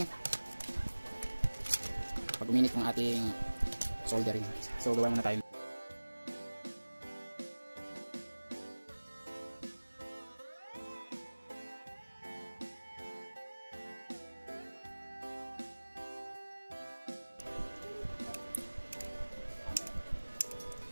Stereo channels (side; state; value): both; inverted; correlation -1.00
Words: ating soldering. So gawa muna tayo.